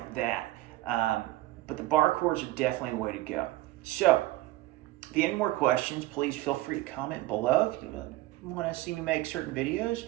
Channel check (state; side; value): quieter; left; 17.3 dB